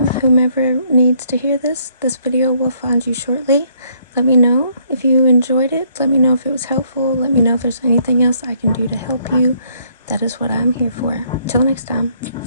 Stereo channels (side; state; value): both; inverted; correlation -0.68